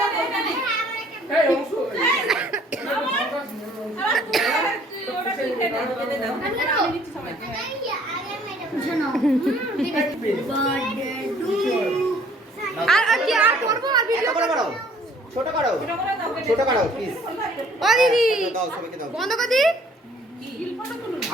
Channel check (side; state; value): both; normal; correlation 0.58